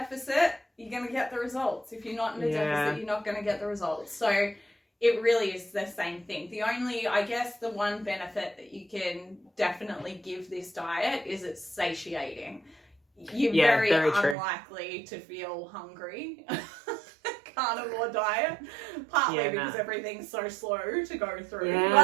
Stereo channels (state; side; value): drops out; left; at 14.4 s